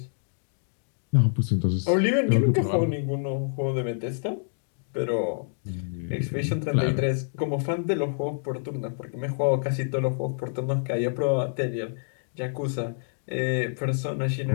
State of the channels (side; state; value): right; silent; digital silence